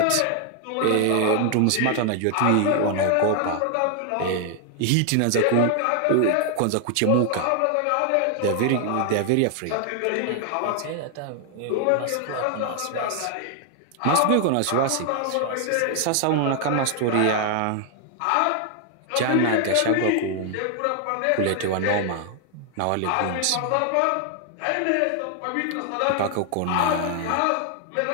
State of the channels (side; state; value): both; different; correlation 0.00